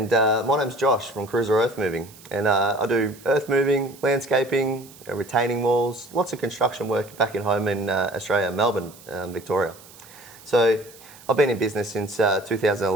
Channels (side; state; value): right; noise; hiss, 22 dB below the sound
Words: my name's Josh from Cruiser Earth Moving. And I do earth moving, landscaping, retaining walls, lots of construction work back in home in Australia, Melbourne, Victoria. So I've been in business since